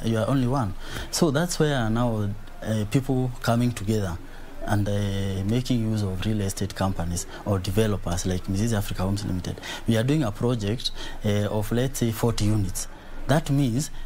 one. So that's where now people coming together and making use of real estate companies or developers like Mizizi Africa Homes Limited. We are doing a project of, let's say, 40 units. That means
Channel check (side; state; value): both; identical; correlation 1.00